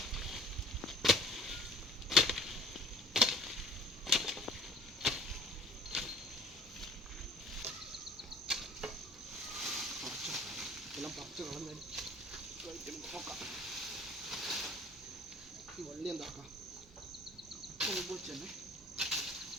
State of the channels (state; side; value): normal; both; correlation 0.48